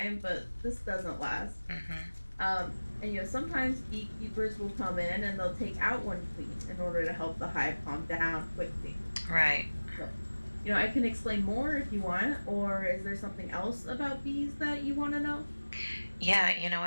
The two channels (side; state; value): both; inverted; correlation -1.00